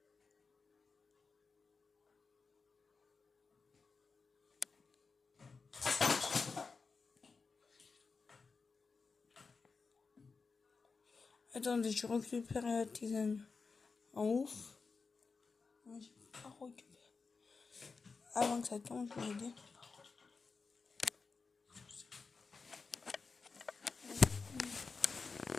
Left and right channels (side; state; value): right; quieter; 4.6 dB